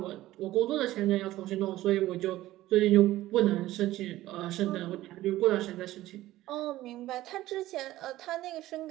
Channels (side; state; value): left; quieter; 15.7 dB